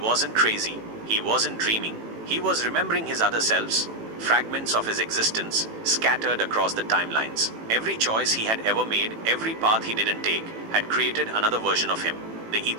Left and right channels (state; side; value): late; left; 18 ms